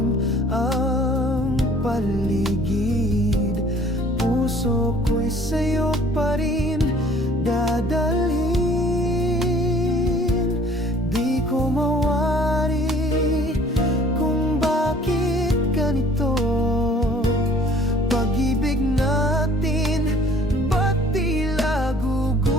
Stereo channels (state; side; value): normal; both; correlation 0.55